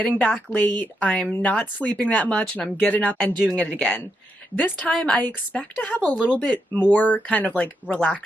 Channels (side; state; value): both; normal; correlation 0.82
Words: back late. I'm not sleeping that much, and I'm getting up and doing it again. This time I expect to have a little bit more kind of like